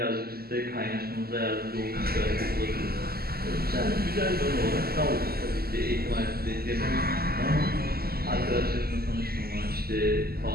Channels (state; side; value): late; left; 0.45 ms